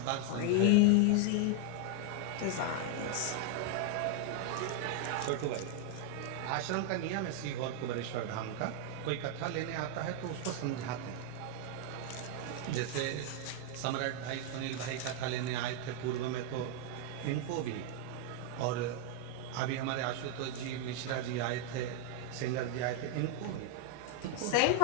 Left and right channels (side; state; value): both; different; correlation 0.00